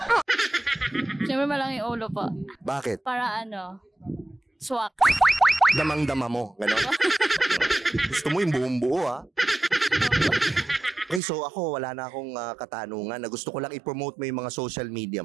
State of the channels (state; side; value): drops out; left; at 11.2 s